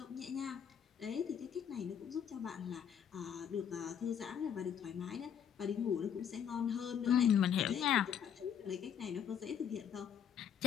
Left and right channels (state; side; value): quieter; right; 8.4 dB